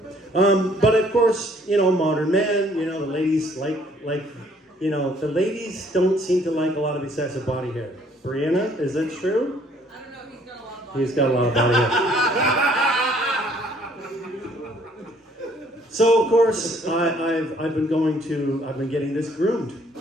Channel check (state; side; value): normal; both; correlation 0.62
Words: But of course, you know, modern man, you know, the ladies you know, the ladies don't seem to like a lot of excessive body hair. Brianna, is that true? I don't know, he's got a lot of body hair. So of course, I've been getting this groomed.